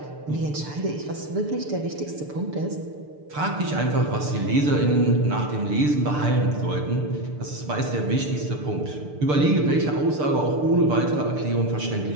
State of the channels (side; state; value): left; late; 6.8 ms